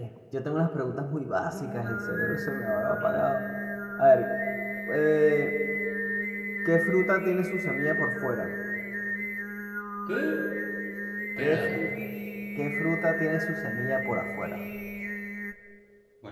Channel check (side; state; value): both; identical; correlation 1.00